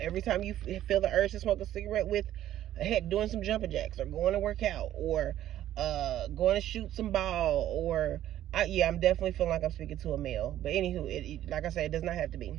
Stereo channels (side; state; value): left; quieter; 12.5 dB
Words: time you feel the urge to smoke a cigarette with, heck, doing some jumping jacks, or going to work out, or going to shoot some ball, or I'm definitely feeling like I'm speaking to a male. But anywho, like I said, it does not have to be.